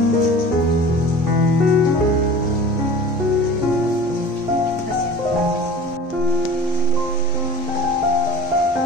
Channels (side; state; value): both; normal; correlation 0.40